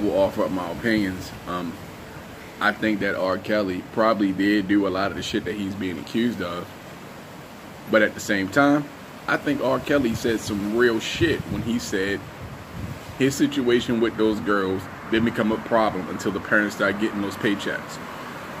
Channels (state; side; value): identical; both; correlation 1.00